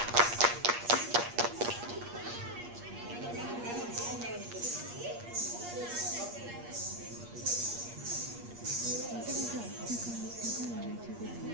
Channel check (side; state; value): left; late; 8.4 ms